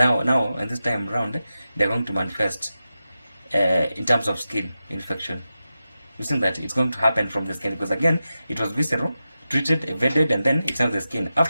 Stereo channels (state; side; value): inverted; both; correlation -0.92